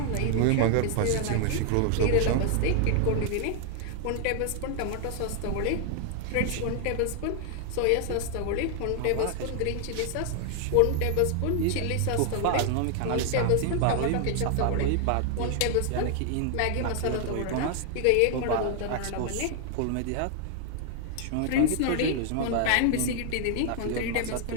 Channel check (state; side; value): different; both; correlation 0.00